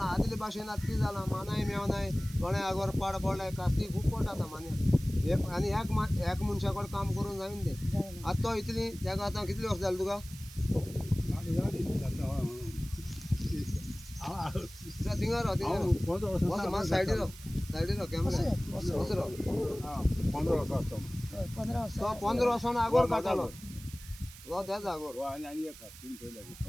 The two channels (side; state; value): right; noise; hiss, 17 dB below the sound